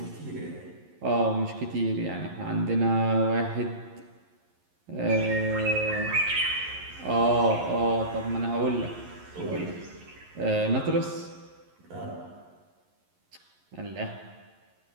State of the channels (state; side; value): late; left; 11 ms